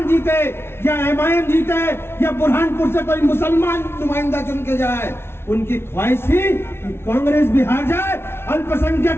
जीते या एमआईएम जीते या बुरहानपुर से कोई मुसलमान नुमाइंदा चुन के जाए। उनकी ख्वाहिश थी कि कांग्रेस भी हार जाए,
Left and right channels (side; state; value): right; late; 0.12 ms